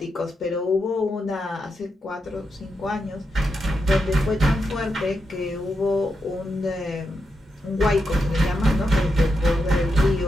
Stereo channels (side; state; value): both; normal; correlation 0.86